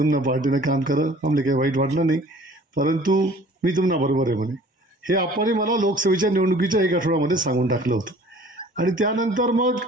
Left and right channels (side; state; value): both; normal; correlation 0.50